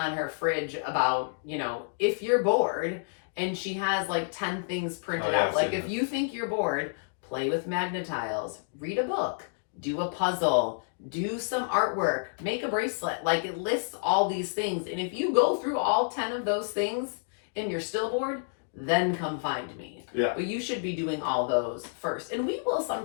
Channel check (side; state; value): right; silent; digital silence